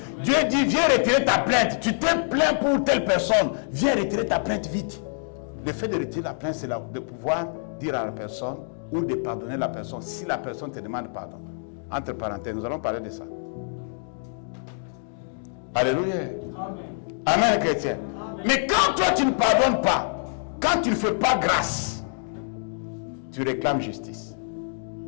Dieu dit, viens retirer ta plainte. Tu t'es plaint pour telle personne. Viens retirer ta plainte vite. Le fait de retirer la plainte, c'est de pouvoir dire à la personne ou de pardonner la personne si la personne te demande pardon. Entre parenthèses, nous allons parler de ça. Alléluia. Amen, Amen chrétien. Amen. Mais quand toi tu ne pardonnes pas, quand tu ne fais pas grâce, tu réclames justice.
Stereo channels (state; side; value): silent; right; digital silence